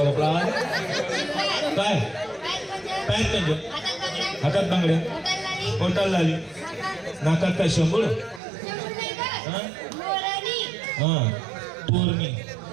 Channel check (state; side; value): drops out; left; at 8.4 s